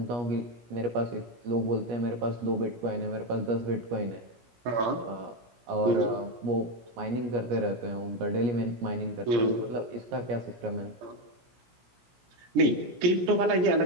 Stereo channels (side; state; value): left; late; 17 ms